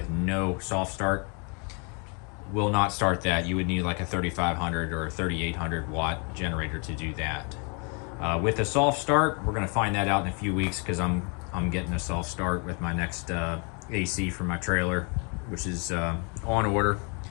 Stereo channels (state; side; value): quieter; right; 35.5 dB